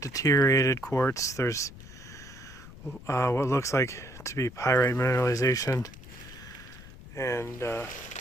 deteriorated quartz. There's what looks like to be pyrite mineralization, and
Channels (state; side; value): noise; left; rumble, 17 dB below the sound